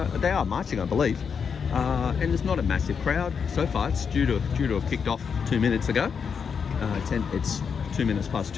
are marching, I believe. And there's not a massive crowd so far. It's due to have kicked off 2 minutes ago. It's 2 minutes past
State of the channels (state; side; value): quieter; right; 6.4 dB